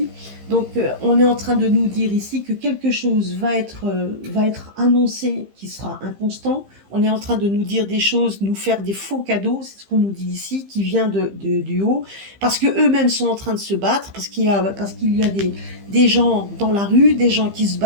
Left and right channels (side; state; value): left; late; 15 ms